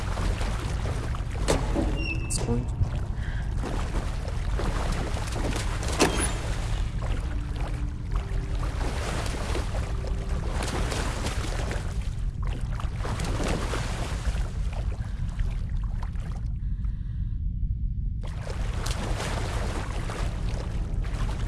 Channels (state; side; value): identical; both; correlation 1.00